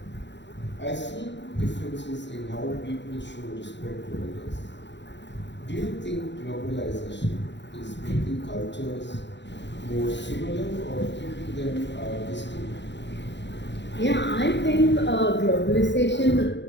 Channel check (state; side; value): late; right; 0.52 ms